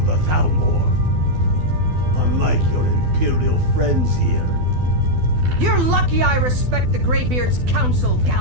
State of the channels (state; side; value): late; left; 12 ms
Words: Thalmor. Unlike your Imperial friends here. You're lucky I respect the Greybeard's counsel,